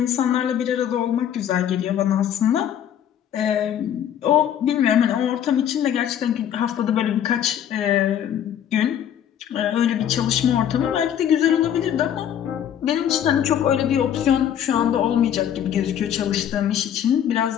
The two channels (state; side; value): quieter; right; 9.8 dB